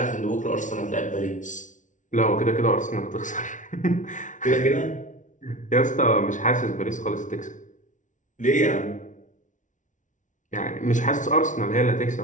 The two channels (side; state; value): right; late; 0.37 ms